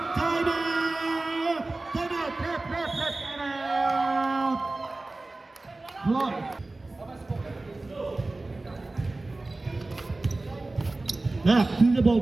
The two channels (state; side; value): quieter; left; 3.1 dB